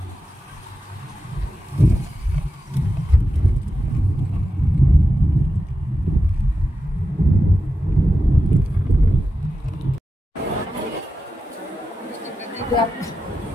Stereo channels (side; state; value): both; normal; correlation 0.91